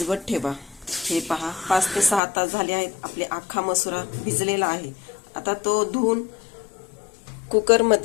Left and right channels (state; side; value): drops out; right; at 2.2 s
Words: ठेवा. हे पहा, 5 ते 6 तास झाले आहेत. आपले अख्खा मसुरा भिजलेला आहे. आता तो धुवून